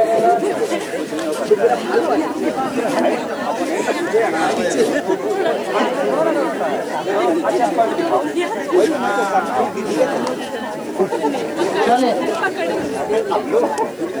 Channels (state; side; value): noise; right; hiss, 30 dB below the sound